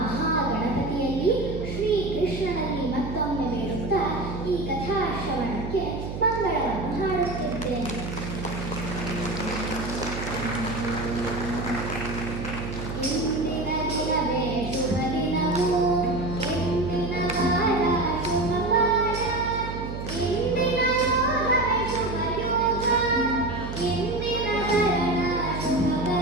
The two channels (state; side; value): noise; right; hum, 6 dB below the sound